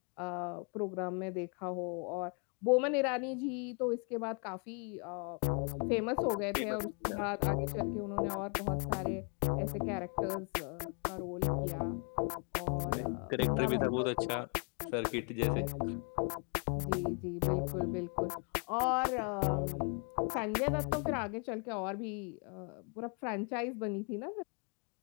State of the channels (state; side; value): quieter; right; 38.4 dB